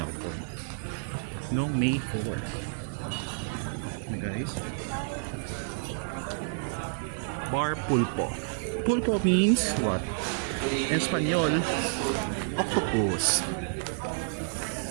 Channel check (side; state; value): left; silent; digital silence